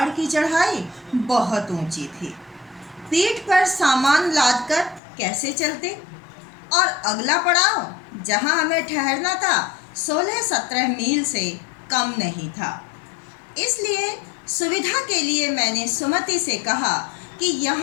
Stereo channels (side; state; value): right; drops out; at 5.0 s